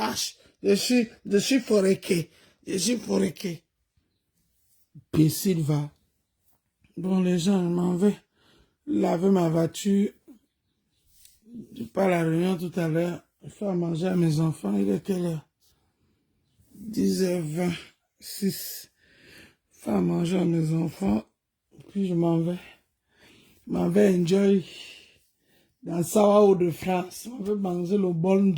Je suis foréqué. Imbécile, va. Bon, les gens, je m'en vais laver ma voiture. Je pars à la réunion tout à l'heure. Je fais à manger à mes enfants. Il est quelle heure? 10h26. Je fais à manger à mes enfants. Puis je m'en vais. Je m'en vais enjoy dans Sao de France. On va manger le bon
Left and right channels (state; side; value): identical; both; correlation 1.00